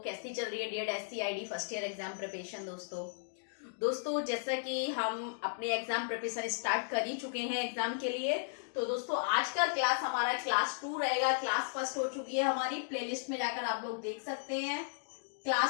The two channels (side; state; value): right; silent; digital silence